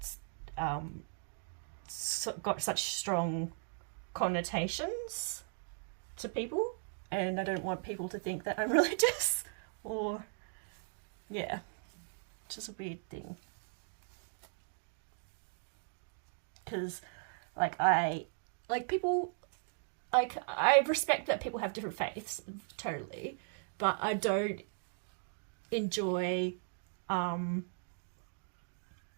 got such strong connotations to people, and I don't want people to think that I'm religious, or, yeah, it's just a weird thing. Because, like, I respect that people have different faiths, totally, but I don't enjoy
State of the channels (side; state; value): left; silent; digital silence